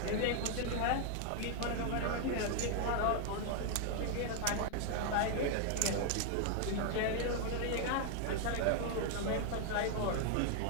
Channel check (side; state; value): both; different; correlation 0.00